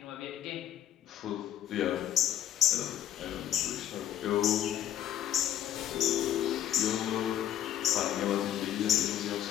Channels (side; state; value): right; quieter; 11.2 dB